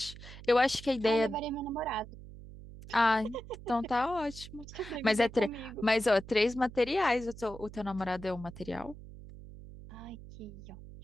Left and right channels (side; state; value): right; noise; hum, 15 dB below the sound